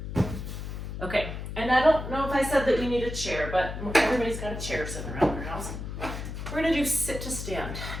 Okay, and I don't know if I said that you need a chair, but everybody's got a chair sitting around their house. We're gonna do sit to stand.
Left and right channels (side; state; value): left; noise; hum, 7 dB below the sound